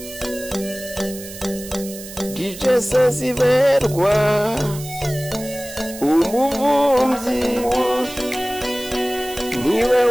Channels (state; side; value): noise; right; hiss, 14 dB below the sound